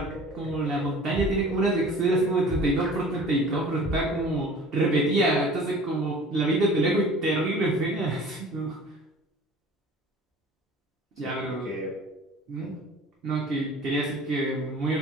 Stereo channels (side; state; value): both; normal; correlation 0.45